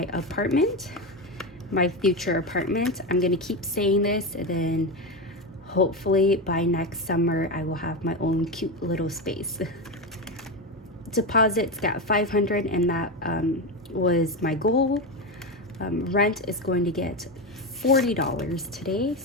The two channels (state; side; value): normal; both; correlation 0.15